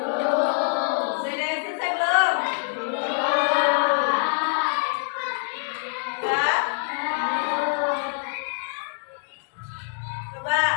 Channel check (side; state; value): right; silent; digital silence